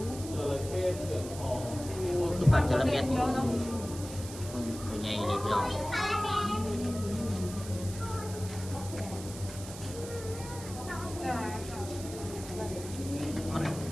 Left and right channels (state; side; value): noise; right; hiss, 13 dB below the sound